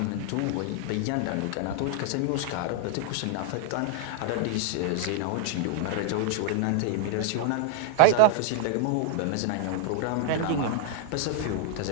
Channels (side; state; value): both; different; correlation 0.00